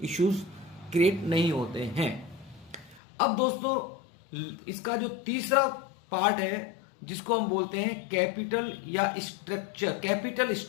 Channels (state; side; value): drops out; right; at 3.0 s